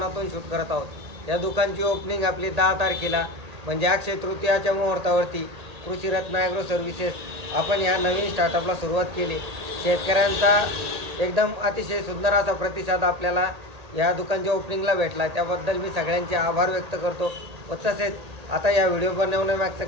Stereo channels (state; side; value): late; left; 1.8 ms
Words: शूट करत आहोत। या दुकानची ओपनिंग आपली 10 तारखेला म्हणजे अक्षय तृतीयाच्या मुहूर्तावरती कृषी रत्न ॲग्रो सर्व्हिसेस आपण या नवीन स्टार्टअपला सुरुवात केली। शेतकऱ्यांचा एकदम अतिशय सुंदर असा प्रतिसाद आपल्याला या दुकानच्या ओपनिंगला भेटला, त्याबद्दल मी सगळ्यांचे आभार व्यक्त करतो। व तसेच आता या व्हिडिओ बनवण्यामागचं